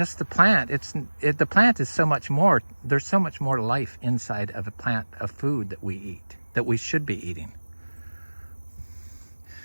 the plant. The plant is so much more. There's so much more life inside of a plant of food that we eat, that we should be eating.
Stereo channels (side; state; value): both; inverted; correlation -1.00